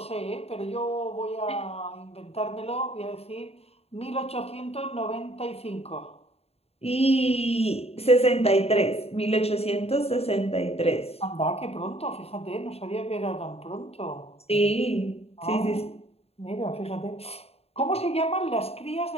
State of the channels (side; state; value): right; late; 0.29 ms